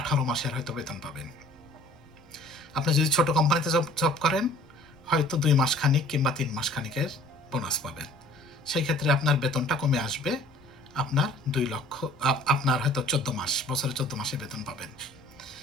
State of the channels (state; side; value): noise; right; rumble, 27 dB below the sound